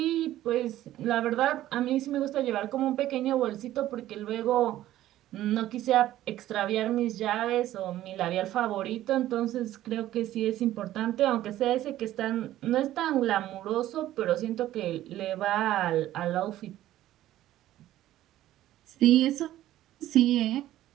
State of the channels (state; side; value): quieter; left; 13.9 dB